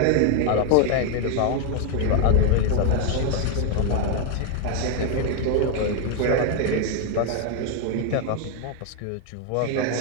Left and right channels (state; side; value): different; both; correlation 0.01